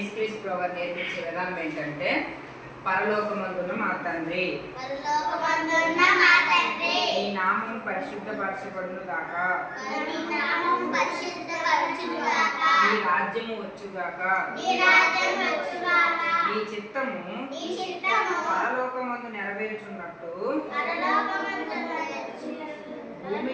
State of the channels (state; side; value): identical; both; correlation 1.00